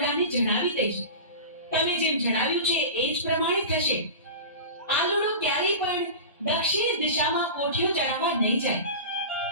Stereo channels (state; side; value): inverted; both; correlation -0.31